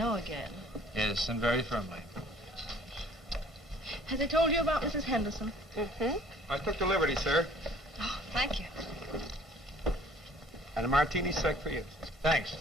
again. Yes, and very firmly. Has he told you about Mrs. Henderson? Mm-hmm. I took the liberty, sir. Oh, thank you. And a martini sec for you. Thanks.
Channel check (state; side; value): normal; both; correlation 0.53